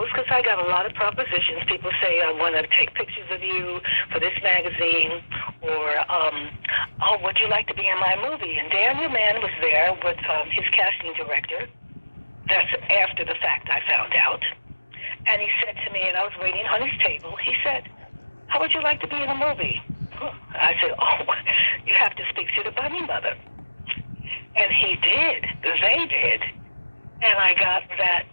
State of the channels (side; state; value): both; inverted; correlation -1.00